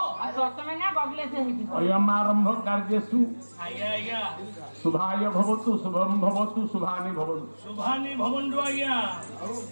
अयमारंभ कार्यसु शुभाय भवतु शुभम भवतु शुभानि भवन्तु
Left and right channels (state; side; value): inverted; both; correlation -1.00